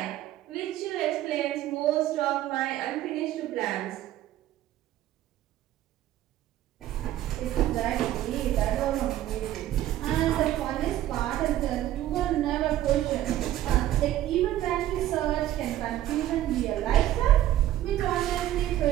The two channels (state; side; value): quieter; left; 13.3 dB